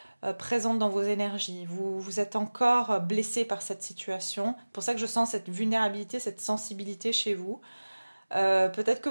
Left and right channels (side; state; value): both; inverted; correlation -1.00